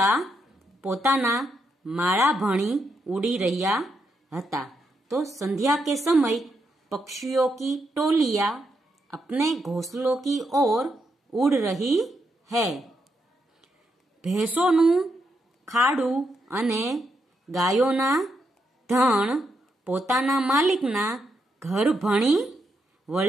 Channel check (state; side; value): normal; both; correlation 0.81